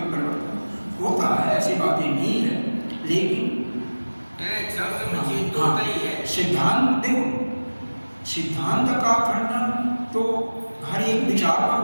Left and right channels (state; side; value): inverted; both; correlation -1.00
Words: परिवर्तन होता है, ऐसी बातें नहीं है। लेकिन सिद्धांत देखो, सिद्धांत का खंडन तो हर एक विचार पर